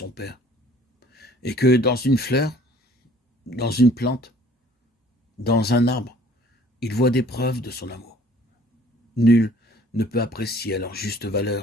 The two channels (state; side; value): normal; both; correlation 0.54